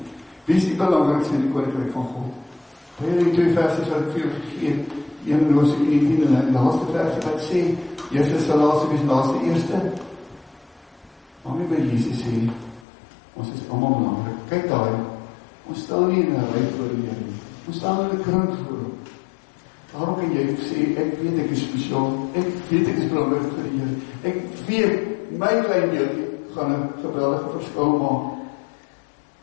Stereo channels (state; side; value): drops out; right; at 12.9 s